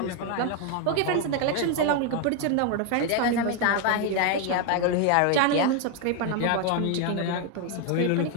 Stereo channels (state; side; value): different; both; correlation 0.01